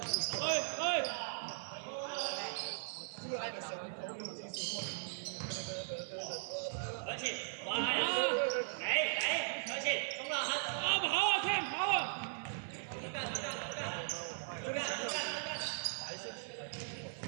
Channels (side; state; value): left; silent; 52 dB below the other